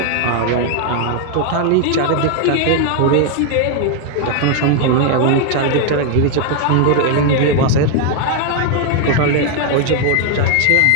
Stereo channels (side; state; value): both; different; correlation 0.00